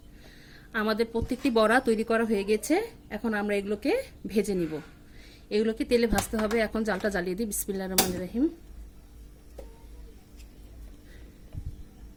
আমাদের প্রত্যেকটি বড়া তৈরি করা হয়ে গেছে। এখন আমরা এগুলোকে ভেজে নিব। এগুলোকে তেলে ভাজতে হবে। এখন জালটা জ্বালিয়ে দিই। বিসমিল্লাহির রহমানির রহিম।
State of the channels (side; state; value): both; identical; correlation 1.00